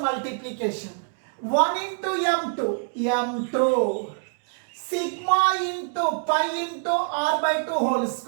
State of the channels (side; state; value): left; silent; 62 dB below the other